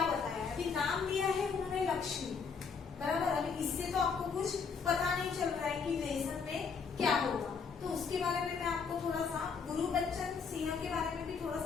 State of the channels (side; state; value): right; quieter; 5.6 dB